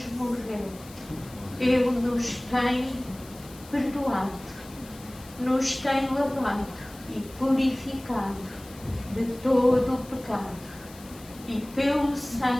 morreu, ele nos tem perdoado, nos tem lavado e purificado de todo o pecado. E pelo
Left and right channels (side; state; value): left; noise; hiss, 20 dB below the sound